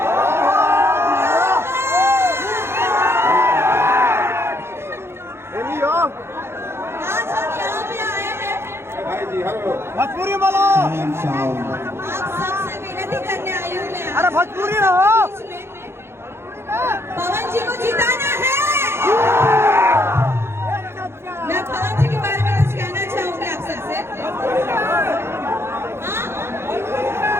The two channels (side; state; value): left; late; 0.12 ms